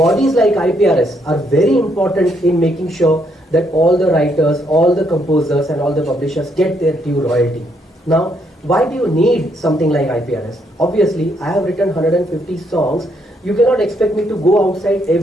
like IPRS are very important in making sure that all the writers, all the composers and all the publishers get their due royalty. Now, why do you need something like IPRS? Obviously, I have written 150 songs. You cannot expect me to go outside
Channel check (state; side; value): normal; both; correlation 0.73